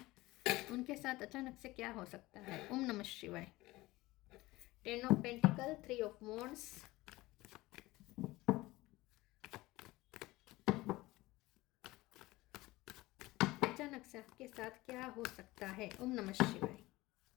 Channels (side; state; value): right; quieter; 19.5 dB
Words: उनके साथ अचानक से क्या हो सकता है। ओम नमः शिवाय। 10 ऑफ पेंटिकल, 3 ऑफ वॉन्ड्स, अचानक से आपके साथ क्या हो सकता है। ओम नमः शिवाय।